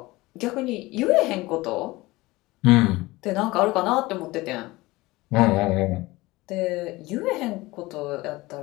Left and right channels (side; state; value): right; quieter; 20.5 dB